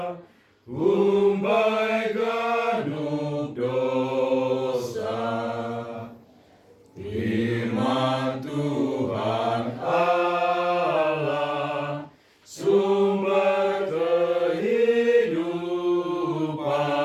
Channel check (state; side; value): identical; both; correlation 1.00